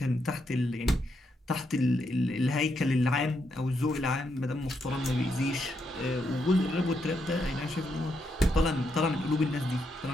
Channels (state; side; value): normal; both; correlation 0.80